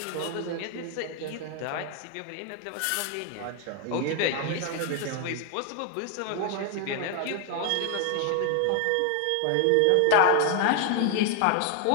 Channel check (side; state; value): both; different; correlation 0.00